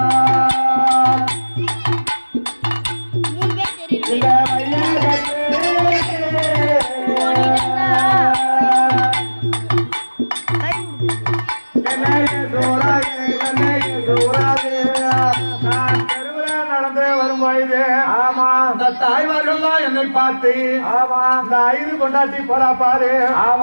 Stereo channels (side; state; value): both; inverted; correlation -1.00